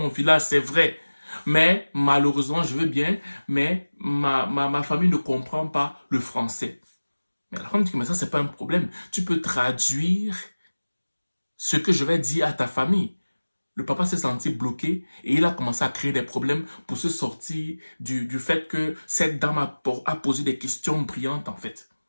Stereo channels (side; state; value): both; inverted; correlation -1.00